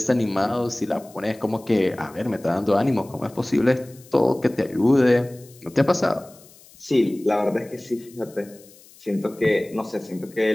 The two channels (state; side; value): noise; left; hiss, 24 dB below the sound